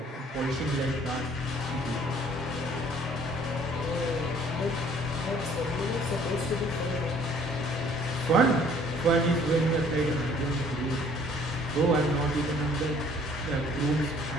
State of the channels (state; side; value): normal; both; correlation 0.57